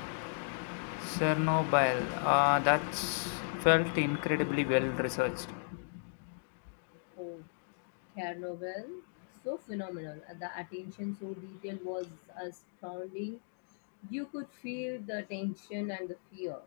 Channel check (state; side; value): silent; right; digital silence